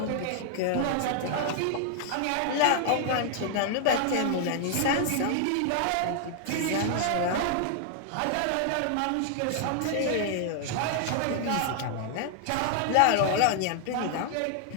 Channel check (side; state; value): both; different; correlation 0.00